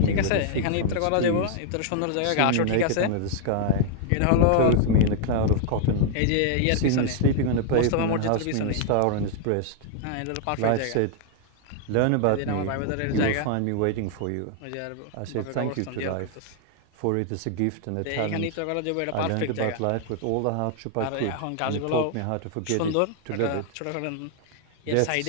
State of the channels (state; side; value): different; both; correlation 0.00